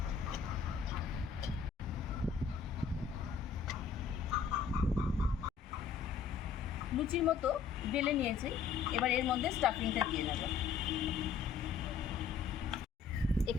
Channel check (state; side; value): quieter; right; 6.4 dB